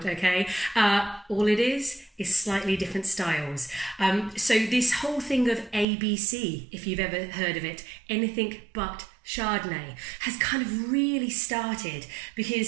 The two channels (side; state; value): left; drops out; at 5.9 s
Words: okay? All it is slightly different styles. So this whole thing of ABC, if you've ever heard of it, anything but Chardonnay, has kind of really started